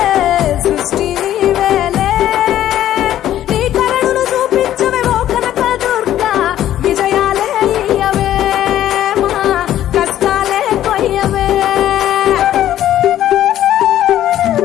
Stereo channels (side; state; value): right; quieter; 12.2 dB